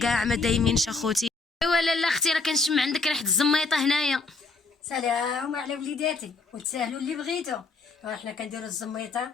ما دايمينش اخوتي. ايوا لالا اختي راه كنشم عندك ريحه الزميطه هنايا. سلام على وليداتي، وتساهلوا اللي بغيتو. حنا كنديروا الزميطه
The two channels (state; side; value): quieter; right; 3.8 dB